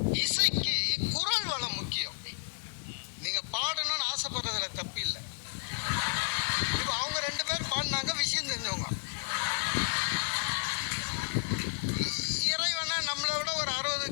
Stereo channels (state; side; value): silent; right; 57 dB below the other